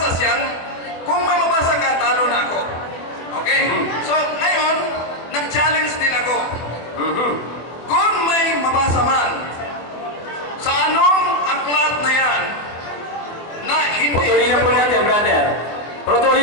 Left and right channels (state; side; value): late; right; 24 ms